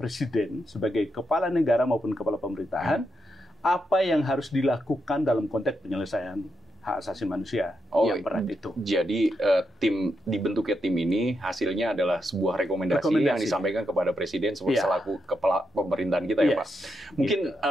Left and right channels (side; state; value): both; normal; correlation 0.83